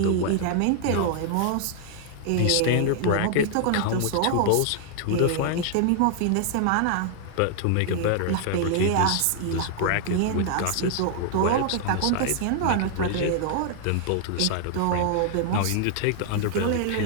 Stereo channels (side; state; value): both; different; correlation 0.00